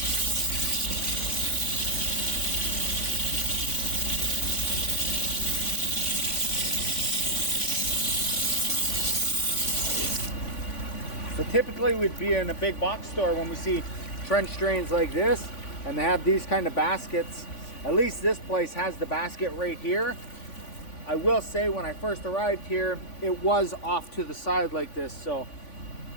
So typically we'd be in a big box store when we see trench drains like this and they have these kind of baskets. At least this place has the basket right here. I will say when I first arrived here, it was off to the side like this, so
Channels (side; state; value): right; late; 3.5 ms